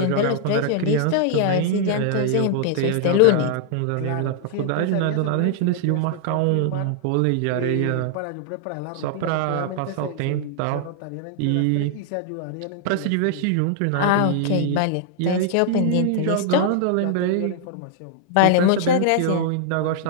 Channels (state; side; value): different; both; correlation -0.01